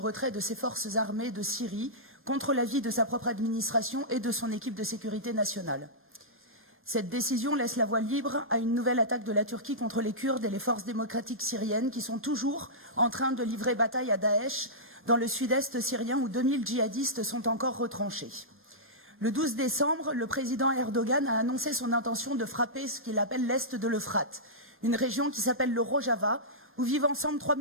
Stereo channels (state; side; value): normal; both; correlation -0.15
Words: de ses forces armées de Syrie contre l'avis de sa propre administration et de son équipe de sécurité nationale. Cette décision laisse la voie libre à une nouvelle attaque de la Turquie contre les Kurdes et les forces démocratiques syriennes qui sont toujours en train de livrer bataille à Daesh dans le sud-est syrien où 2000 djihadistes sont encore retranchés. Le 12 décembre, le président Erdogan a annoncé son intention de frapper ce qu'il appelle l'est de l'Euphrate, une région qui s'appelle le Rojava, où vivent ensemble 3